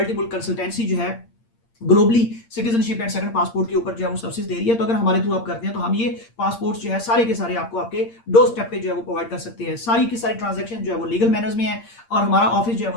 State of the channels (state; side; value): late; right; 8.7 ms